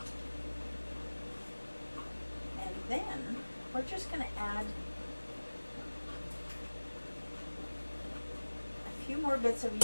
And then we're just going to add a few more bits of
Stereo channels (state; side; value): inverted; both; correlation -1.00